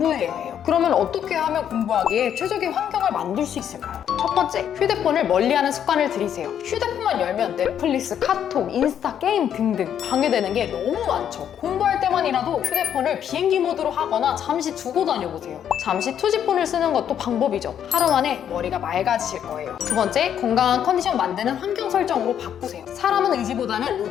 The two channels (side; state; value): right; quieter; 9.3 dB